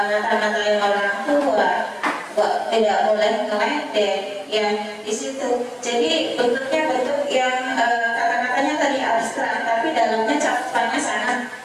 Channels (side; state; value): both; identical; correlation 1.00